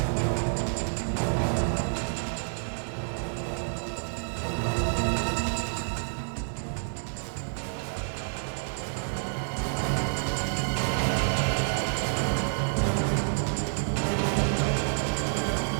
कहाँ गया? अभी तो यही था। निकल बाहर, मेरा बैग दे, निकल।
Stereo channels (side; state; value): left; silent; digital silence